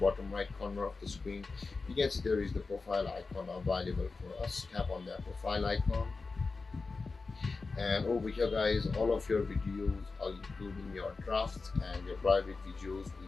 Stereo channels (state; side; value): quieter; right; 4.1 dB